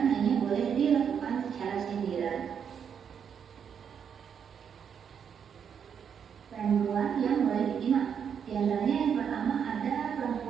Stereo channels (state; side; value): quieter; left; 7.5 dB